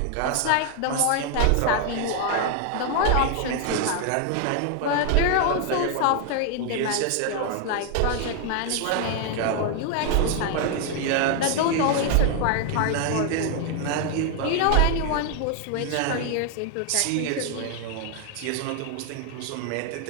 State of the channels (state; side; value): different; both; correlation 0.00